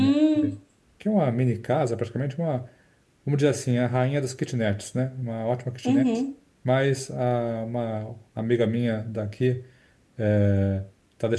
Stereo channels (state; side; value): identical; both; correlation 1.00